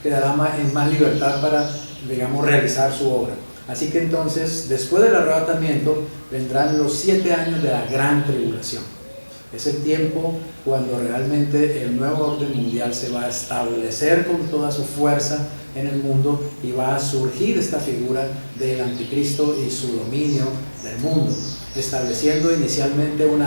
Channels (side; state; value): both; inverted; correlation -1.00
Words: en más libertad para, digamos, realizar su obra. Así que entonces, después del arrebatamiento, vendrán los 7 años de la gran tribulación. Es el tiempo cuando realmente el nuevo orden mundial se va a establecer con toda su fuerza en el mundo y va a surgir esta figura del anticristo y su dominio del mundo, estableciendo inicialmente